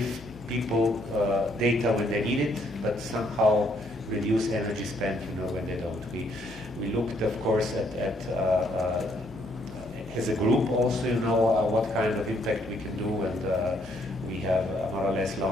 people data when they need it, but somehow reduce energy spent, you know, when they don't. We looked, of course, at as a group also, you know, what kind of impact we can do, and we have more or less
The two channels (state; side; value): noise; left; hum, 18 dB below the sound